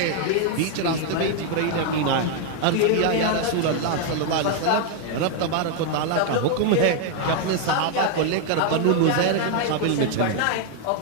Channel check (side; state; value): both; different; correlation 0.00